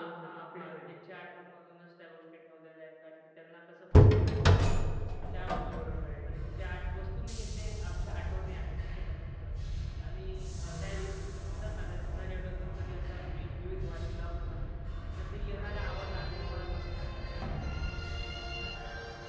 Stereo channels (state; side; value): identical; both; correlation 1.00